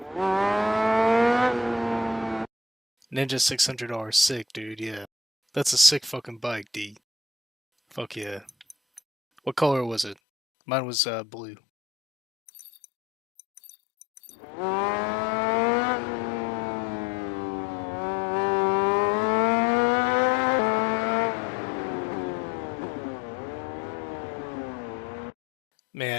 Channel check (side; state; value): right; drops out; at 10.2 s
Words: Ninja $600, sick, dude. Yeah, that's a sick fucking bike, D. Fuck yeah. What color was it? Mine was blue.